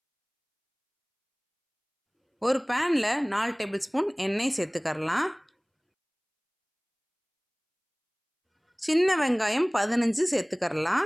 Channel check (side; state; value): both; identical; correlation 1.00